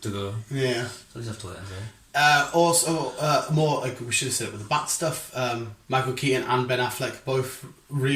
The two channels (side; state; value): both; identical; correlation 1.00